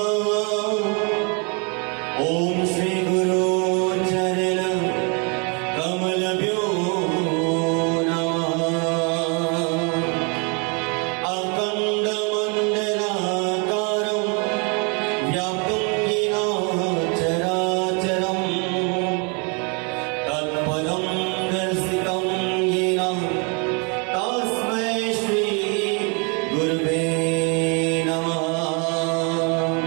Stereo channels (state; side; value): quieter; left; 34.7 dB